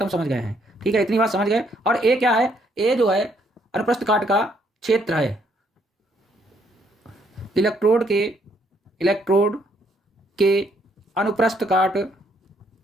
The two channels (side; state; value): both; normal; correlation 0.69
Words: हम समझ गए हैं। ठीक है, इतनी बात समझ गए। और ए क्या है, ए जो है अनुप्रस्थ काट का क्षेत्र है, इलेक्ट्रोड के अनुप्रस्थ